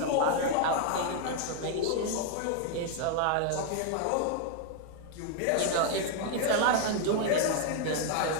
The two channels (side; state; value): both; different; correlation 0.00